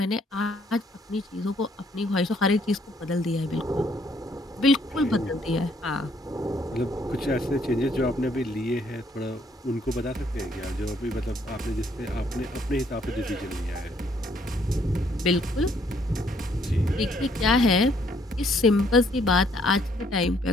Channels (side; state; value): both; normal; correlation 0.67